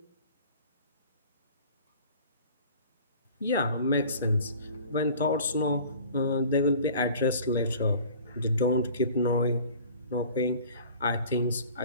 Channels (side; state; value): both; inverted; correlation -0.46